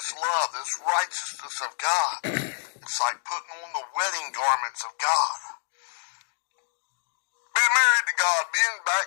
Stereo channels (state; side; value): silent; right; 60 dB below the other